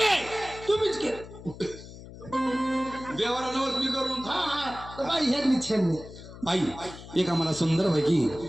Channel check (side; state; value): left; noise; hum, 15 dB below the sound